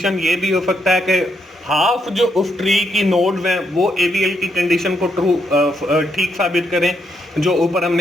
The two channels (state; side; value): normal; both; correlation 0.78